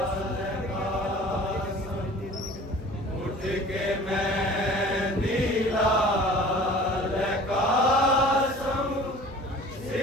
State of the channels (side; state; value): both; normal; correlation 0.45